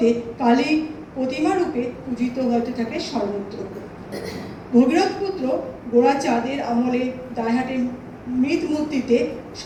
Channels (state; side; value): identical; both; correlation 1.00